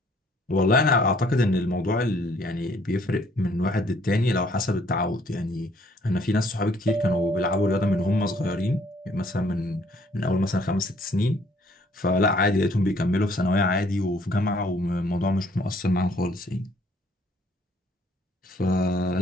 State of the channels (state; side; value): normal; both; correlation 0.63